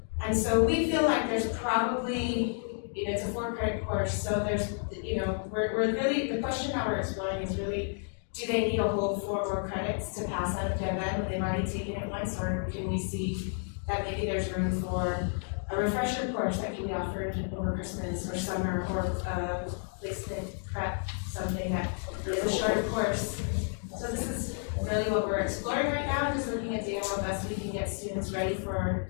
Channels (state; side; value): silent; right; 57 dB below the other